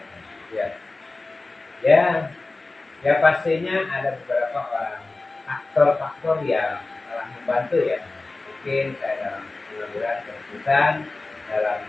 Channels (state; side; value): quieter; right; 3.3 dB